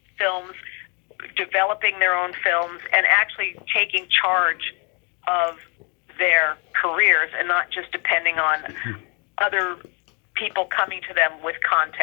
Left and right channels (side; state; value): right; quieter; 33.9 dB